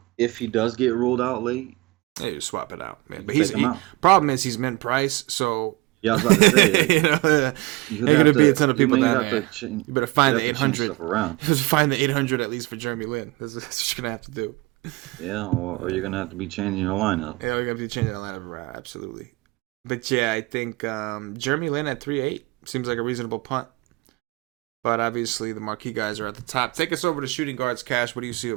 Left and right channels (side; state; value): left; quieter; 22.7 dB